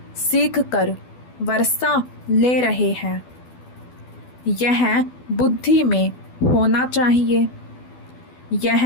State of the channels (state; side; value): late; right; 12 ms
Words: सीख कर वर्षा ले रहे हैं। यह बुद्धि में होना चाहिए।